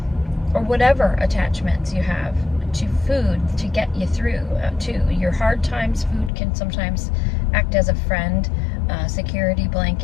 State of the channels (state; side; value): drops out; right; at 6.3 s